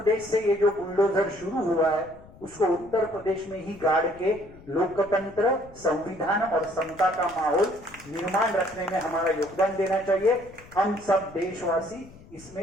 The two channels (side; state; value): left; noise; rumble, 21 dB below the sound